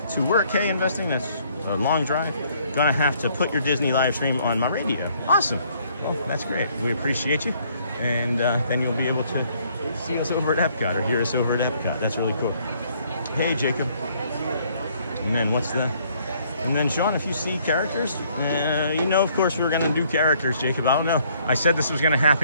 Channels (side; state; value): both; inverted; correlation -0.65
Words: to work. Hey, investing, that's a long drive. Gonna have to put your Disney live stream on my radio. Awesome. Well, that's great. We appreciate you. And then you'll be able to see us over at Epcot or hear us over at Epcot. That's really cool. Hey, Jacob. And then what's the... And then, Sean, if you see characters, you know, of course, we were going to do characters, Jacob. I don't know. I said this was going to